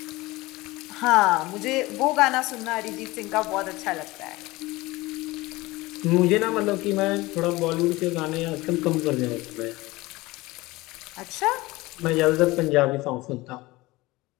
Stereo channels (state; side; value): quieter; right; 20.6 dB